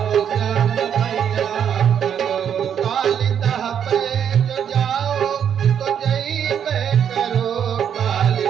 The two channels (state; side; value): quieter; left; 8.5 dB